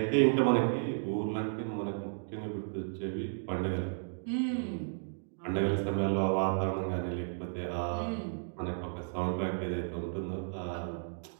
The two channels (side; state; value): left; silent; digital silence